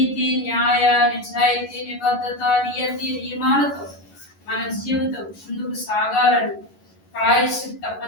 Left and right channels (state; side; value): late; right; 11 ms